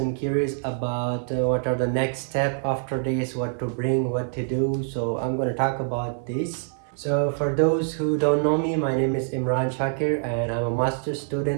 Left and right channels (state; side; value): silent; left; 57 dB below the other